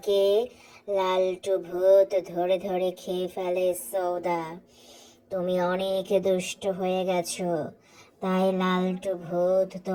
লালটু ভূত ধরে ধরে খেয়ে ফেলে সৌদা। তুমি অনেক দুষ্ট হয়ে গেছো, তাই লালটু ভূত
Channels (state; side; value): identical; both; correlation 1.00